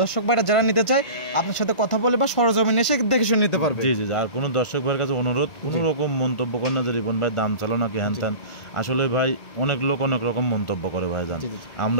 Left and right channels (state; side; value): late; right; 1.9 ms